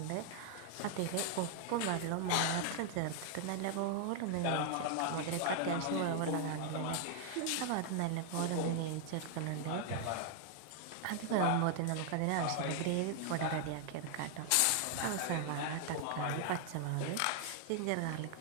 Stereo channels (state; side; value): different; both; correlation 0.00